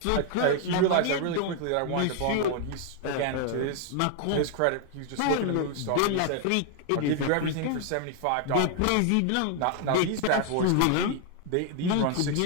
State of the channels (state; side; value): different; both; correlation 0.00